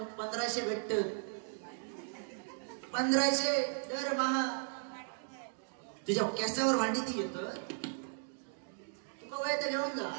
1500 भेटत, 1500 दरमहा तुझ्या केसावर भांडी ती घेत, तुका वय तर घेऊन जा.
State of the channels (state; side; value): silent; left; digital silence